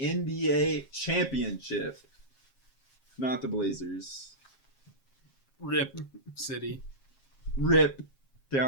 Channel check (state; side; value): late; right; 7.4 ms